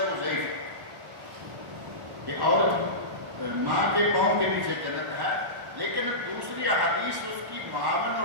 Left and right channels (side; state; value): left; late; 1.1 ms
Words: وہ ضعیف ہے کہ عورت ماں کے پاؤں کے نیچے جنت ہے، لیکن دوسری احادیث اس کی معاون